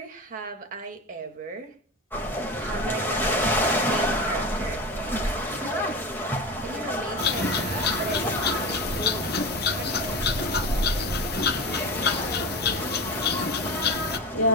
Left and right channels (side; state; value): both; normal; correlation 0.25